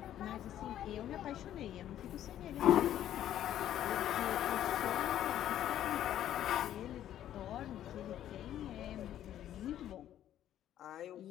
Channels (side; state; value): right; quieter; 11.6 dB